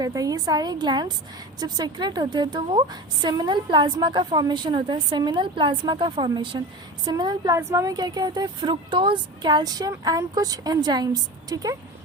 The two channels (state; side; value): normal; both; correlation 0.30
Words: है। ये सारे ग्लैंड्स जब सेक्रेट होते हैं तो वो सेमिनल प्लाज्मा का फॉर्मेशन होता है, सेमिनल प्लाज्मा का फॉर्मेशन। सेमिनल प्लाज्मा में क्या क्या होता है? फ्रुक्टोज, कैल्शियम एंड कुछ एंजाइम्स। ठीक है,